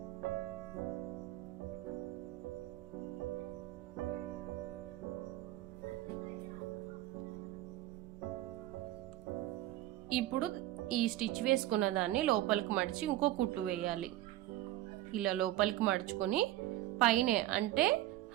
ఇప్పుడు ఈ స్టిచ్ వేసుకున్న దాన్ని లోపలికి మడిచి ఇంకో కుట్టు వేయాలి. ఇలా లోపలికి మడుచుకొని పైనే అంటే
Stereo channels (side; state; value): left; quieter; 15.0 dB